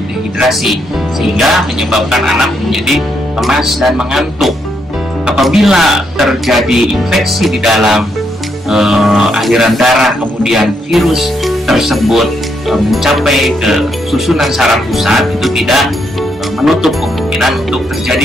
dehidrasi, sehingga menyebabkan anak menjadi lemas dan mengantuk. Apabila terjadi infeksi di dalam aliran darah, kemudian virus tersebut mencapai ke susunan saraf pusat, itu tidak menutup kemungkinan untuk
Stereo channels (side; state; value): both; normal; correlation 0.77